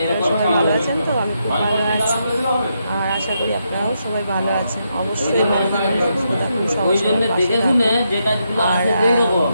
আপনারা সবাই ভালো আছেন, তো আমি খুব ভালো আছি আর আশা করি আপনারাও সবাই ভালো আছেন। অবশ্যই ভালো থাকুন, সুস্থ থাকুন, সবার সঙ্গে পাশে থাকুন। আর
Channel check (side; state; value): both; inverted; correlation -0.81